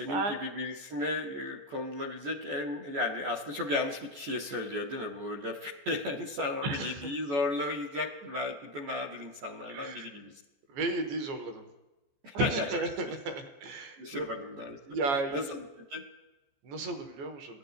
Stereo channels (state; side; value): late; left; 14 ms